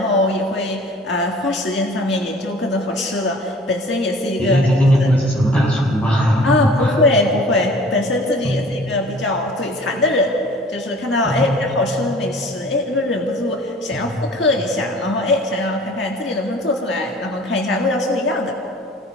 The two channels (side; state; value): both; normal; correlation 0.47